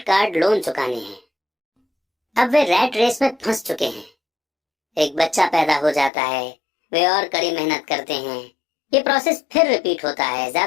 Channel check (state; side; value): drops out; right; at 6.1 s